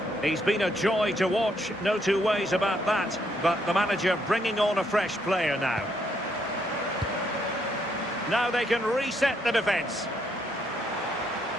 He's been a joy to watch, no two ways about that. But the manager bringing on a fresh player now. Now they can reset the defence.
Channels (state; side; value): normal; both; correlation 0.73